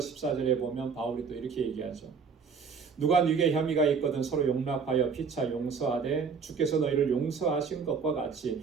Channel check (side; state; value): left; quieter; 5.7 dB